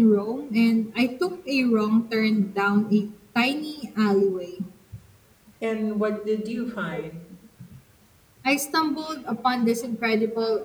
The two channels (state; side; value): identical; both; correlation 1.00